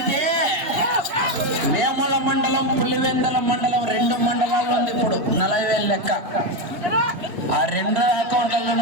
వేముల మండలం, పులివెందల మండలం 2 మండలాల్లో ఉంది ఇప్పుడు 40,000 లెక్క. ఆ 2 అకౌంట్ల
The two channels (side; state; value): left; late; 2.9 ms